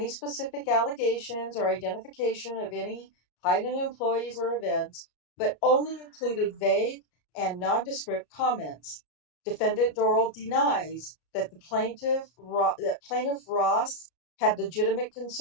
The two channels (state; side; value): late; right; 34 ms